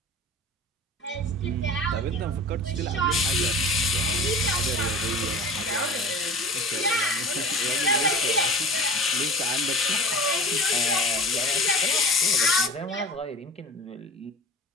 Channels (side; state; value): both; normal; correlation 0.38